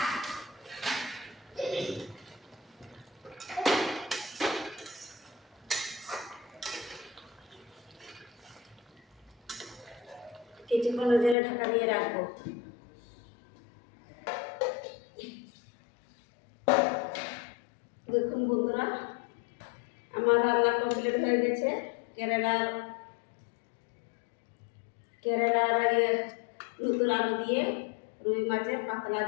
কিছুক্ষণ জেলে ঢাকা দিয়ে রাখবো। দেখুন বন্ধুরা, আমার রান্না কমপ্লিট হয়ে গেছে। কেরালার নতুন আলু দিয়ে রুই মাছের পাতলা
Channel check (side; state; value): right; drops out; at 11.4 s